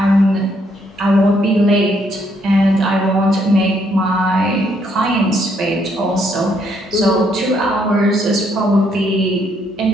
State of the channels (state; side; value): normal; both; correlation 0.71